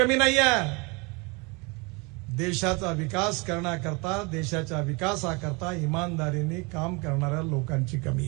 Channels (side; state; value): left; quieter; 28.8 dB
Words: नाही आहे. देशाचा विकास करण्याकरता, देशाच्या विकासाकरता इमानदारीने काम करणाऱ्या लोकांची